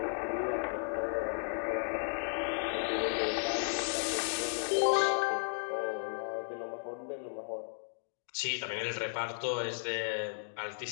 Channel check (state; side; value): silent; right; digital silence